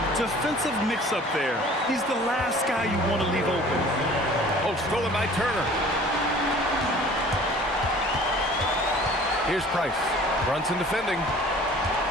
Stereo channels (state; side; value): normal; both; correlation 0.48